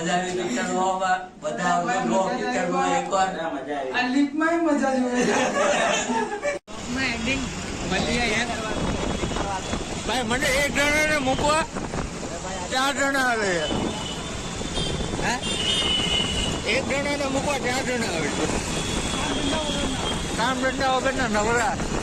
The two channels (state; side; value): identical; both; correlation 1.00